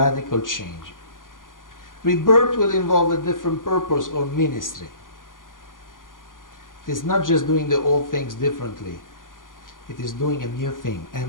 change. Rebirth will involve a different purpose or ministry. It is not just doing the old things differently. It is doing a new thing,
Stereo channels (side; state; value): right; late; 0.89 ms